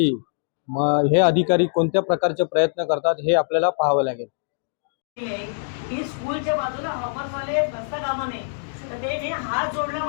हे अधिकारी कोणत्या प्रकारचे प्रयत्न करतात हे आपल्याला पाहावं लागेल। की स्कूलच्या बाजूला हॉपरवाले बसता कामा नये तर ते हात जोडला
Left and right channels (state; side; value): silent; right; digital silence